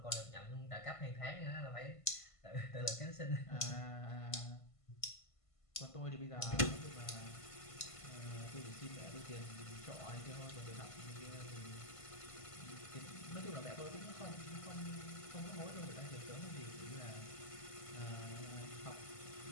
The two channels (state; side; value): late; right; 1.5 ms